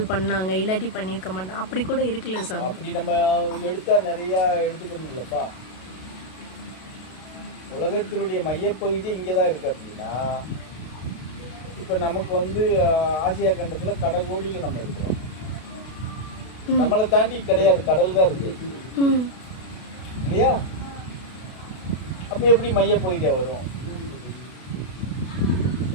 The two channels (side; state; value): right; late; 32 ms